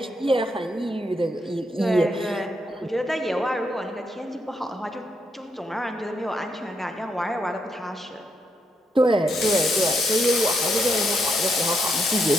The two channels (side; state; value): both; normal; correlation 0.78